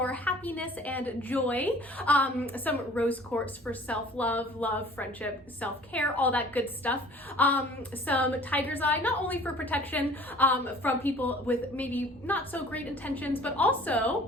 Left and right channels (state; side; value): normal; both; correlation 0.50